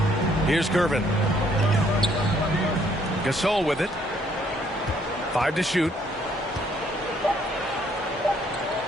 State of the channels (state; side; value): normal; both; correlation 0.66